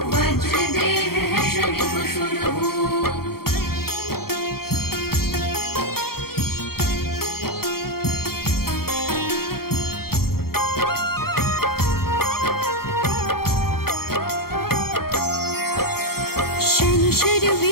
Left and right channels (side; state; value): right; late; 0.94 ms